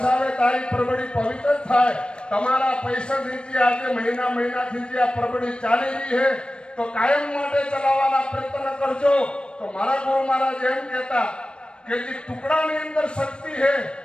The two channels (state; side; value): late; right; 0.055 ms